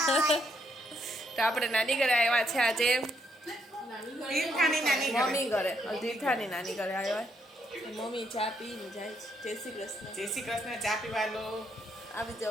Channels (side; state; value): both; normal; correlation 0.74